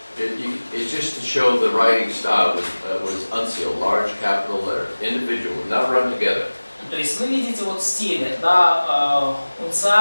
it's just to show the writing style was uncial, large capital letters, individual, not run together. То есть вы видите вот стили, да,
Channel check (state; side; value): inverted; both; correlation -1.00